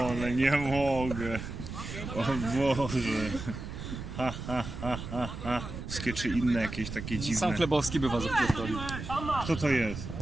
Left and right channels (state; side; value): noise; right; rumble, 8 dB below the sound